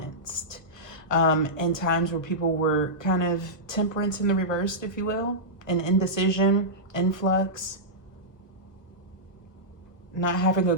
in times where people were kind of temperance in the reversed, if you will, and indecision, influx, not having a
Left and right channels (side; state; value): right; late; 1.5 ms